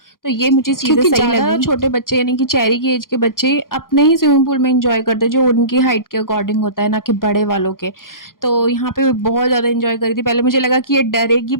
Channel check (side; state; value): right; late; 0.91 ms